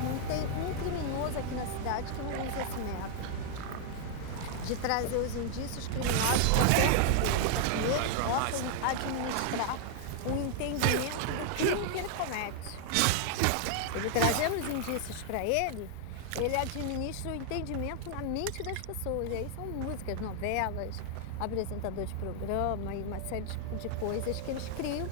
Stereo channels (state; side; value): different; both; correlation 0.00